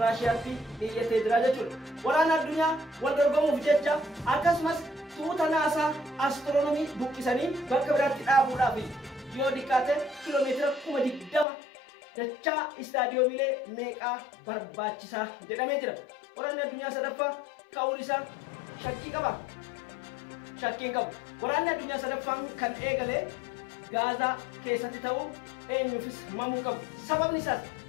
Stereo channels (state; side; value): drops out; right; at 11.5 s